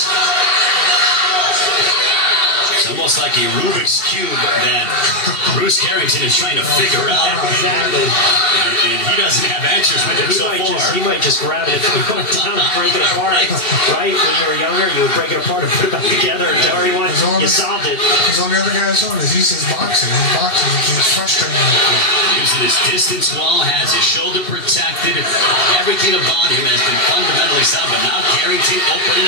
It's almost like a Rubik's Cube that Bruce Carrington is trying to figure out. Exactly. And he doesn't have answers with it so far. He might just grab it and break it apart. Right? When you were younger, you would break it apart and put it back together and tell everyone you solved it. Because all the other guys on this, he's just boxing. He's boxing. He's frustrated. Using his distance well, has his shoulder protected. Everything about him has been fundamentally sound, but now Carrington opening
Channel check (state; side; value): late; right; 2.7 ms